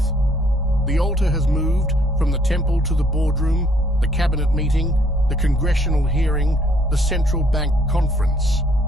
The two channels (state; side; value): normal; both; correlation 0.64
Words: The altar has moved from the temple to the boardroom, the cabinet meeting, the congressional hearing, the central bank conference.